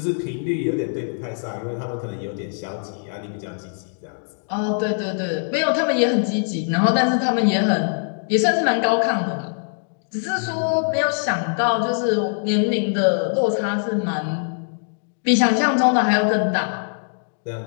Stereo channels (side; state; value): right; silent; digital silence